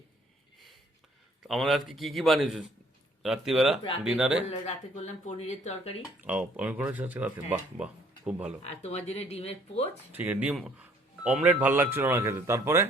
আমাদের আজকে কি কি বানিয়েছো রাত্রিবেলা ডিনারে? রাতে করলাম পনিরের তরকারি। ও আমি করেছি আজকে রাতে, বাহ বাহ, খুব ভালো। আর তোমার জন্য ডিমের পোচ। ঠিক আছে, ডিম অমলেট ভালো লাগছিল না খেতে, তারপরে?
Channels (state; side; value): normal; both; correlation 0.61